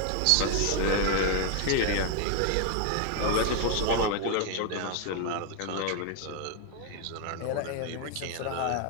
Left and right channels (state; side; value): different; both; correlation 0.00